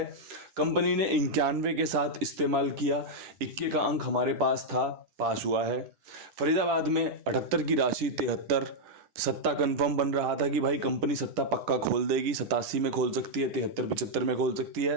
कंपनी ने 91 के साथ इस्तेमाल किया, इक्के का अंक हमारे पास था, पास हुआ है। फरीदाबाद में 78 की राशि 73, सत्ता कंफर्म बन रहा था कि भाई कंपनी सत्ता पक्का खोल देगी, 87 में खोल सकती है, 73 75 में खोल सकती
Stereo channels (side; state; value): left; late; 9.9 ms